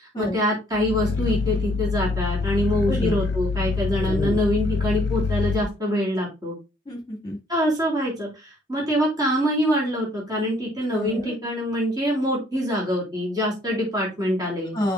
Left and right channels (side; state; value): both; normal; correlation 0.64